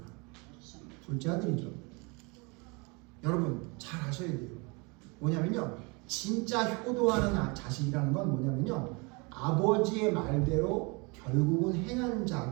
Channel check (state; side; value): quieter; left; 29.4 dB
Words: 둘째 아들이죠. 여러분 잘 아셔야 돼요. 뭐냐면요, 진짜 효도하는 자식이라는 건 뭐냐면요, 아버지의 말대로 결국은 행한